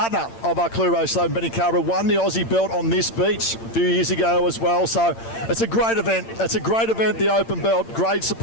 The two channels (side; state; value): right; late; 8.8 ms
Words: of our Chloe Rose-Slaven, Benny Carver, won the Aussie belt on this beach a few years ago as well. So it's a great event. It's a great event, the Open Belt. Great